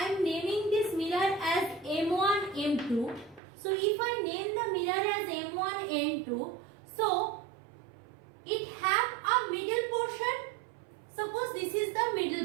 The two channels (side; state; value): left; drops out; at 3.4 s